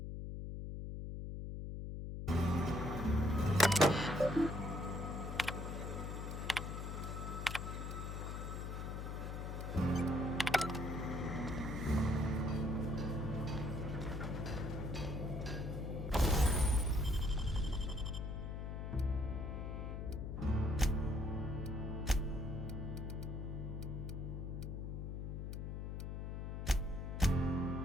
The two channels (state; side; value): noise; left; hum, 4 dB below the sound